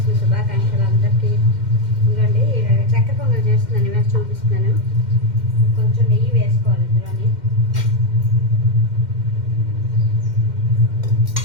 శుభాకాంక్షలు అందరికీ. ఇంకండి చక్కెర పొంగల్ చేస్తున్నాను, ఇవాళ చూపిస్తున్నాను. కొంచెం నెయ్యి వేసుకోవాలి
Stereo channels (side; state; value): left; late; 2.1 ms